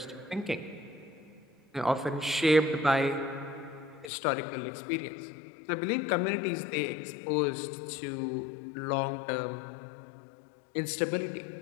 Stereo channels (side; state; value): right; drops out; at 4.1 s